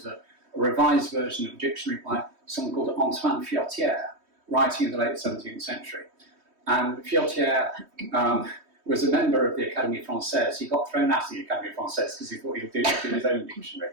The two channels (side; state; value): left; late; 3.2 ms